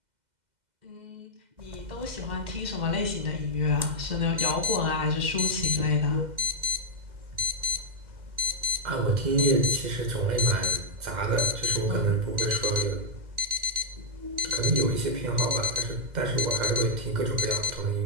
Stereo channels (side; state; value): left; late; 2.1 ms